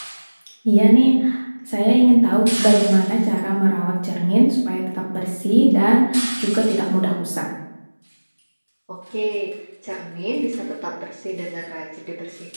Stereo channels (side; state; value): both; inverted; correlation -1.00